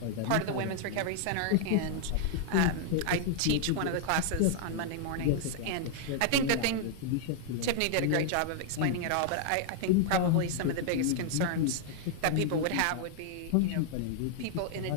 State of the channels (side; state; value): both; different; correlation 0.00